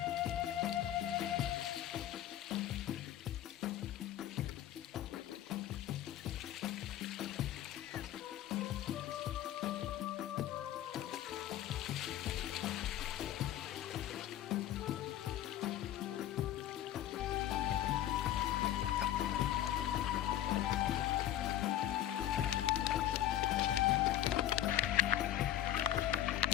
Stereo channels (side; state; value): right; quieter; 12.2 dB